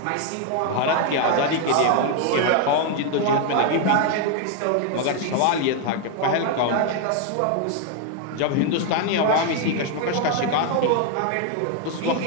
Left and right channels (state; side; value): different; both; correlation 0.00